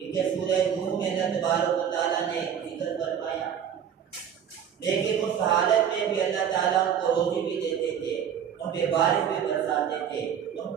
کے سورہ نوح میں اللہ تبارک و تعالیٰ نے ذکر فرمایا. لیکن اس حالت میں بھی اللہ تعالیٰ ان کو روزی بھی دیتے تھے، ان پہ بارش بھی برساتے تھے، ان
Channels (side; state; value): left; quieter; 8.6 dB